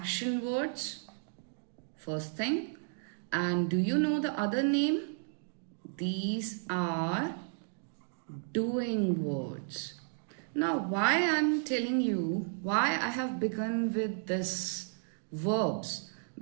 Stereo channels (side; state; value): left; silent; digital silence